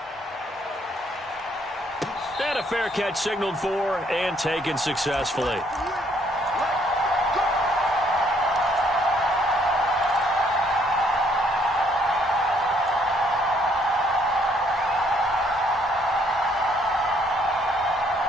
And a fair catch signaled for and taken successfully.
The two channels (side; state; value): both; normal; correlation 0.67